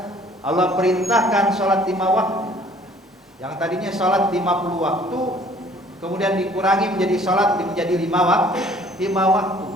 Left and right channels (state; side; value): normal; both; correlation 0.55